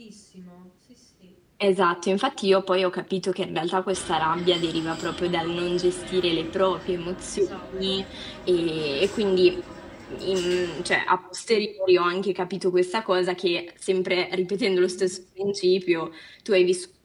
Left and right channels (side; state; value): both; identical; correlation 1.00